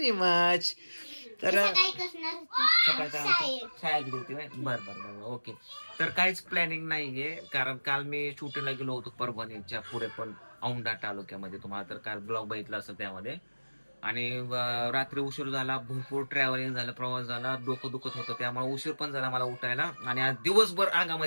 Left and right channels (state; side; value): inverted; both; correlation -1.00